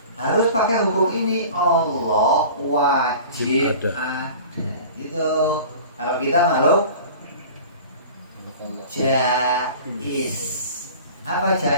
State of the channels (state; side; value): inverted; both; correlation -0.41